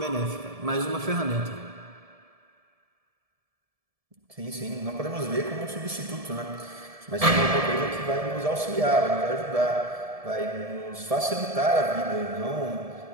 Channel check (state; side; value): late; left; 1.7 ms